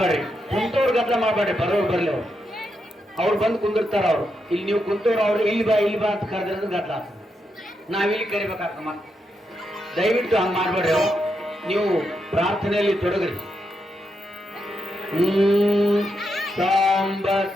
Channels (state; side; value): normal; both; correlation 0.83